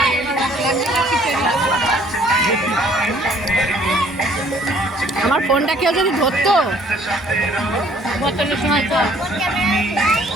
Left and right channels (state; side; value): normal; both; correlation 0.59